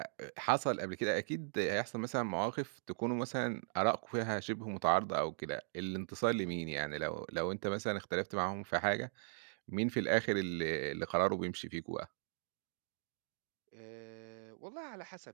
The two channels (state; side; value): silent; left; digital silence